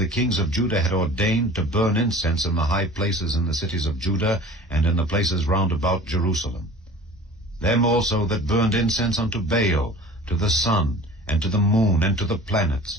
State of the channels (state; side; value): normal; both; correlation 0.42